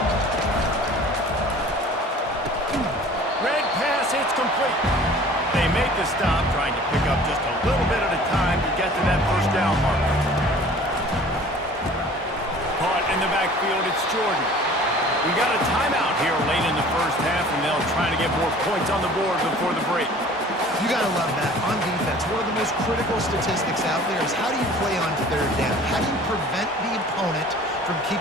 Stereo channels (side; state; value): both; normal; correlation 0.47